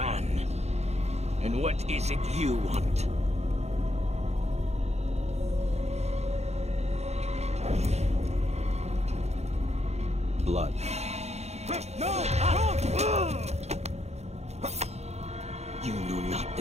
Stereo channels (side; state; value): left; late; 0.31 ms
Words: And what is it you want? Blood. You know not